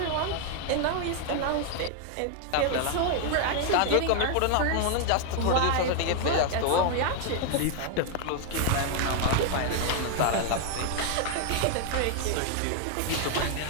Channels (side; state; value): both; different; correlation 0.00